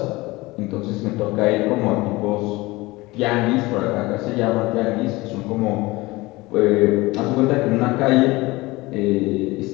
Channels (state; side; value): quieter; right; 21.3 dB